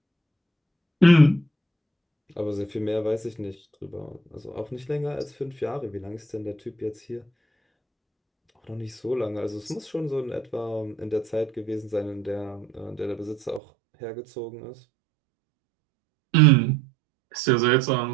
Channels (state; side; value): drops out; left; at 13.6 s